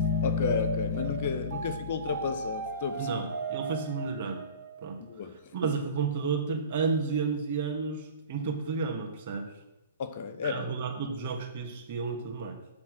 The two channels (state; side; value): inverted; both; correlation -0.38